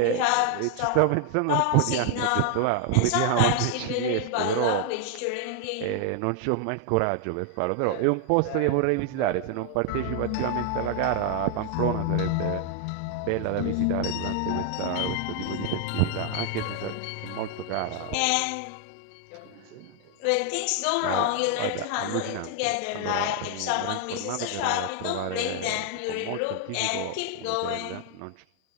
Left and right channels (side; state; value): both; different; correlation 0.00